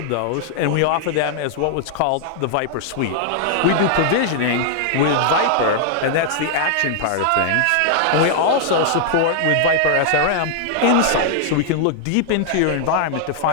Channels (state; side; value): different; both; correlation -0.01